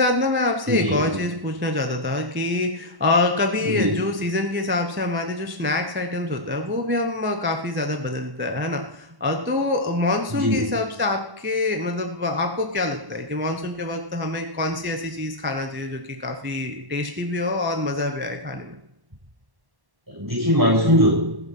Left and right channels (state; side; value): late; left; 1.1 ms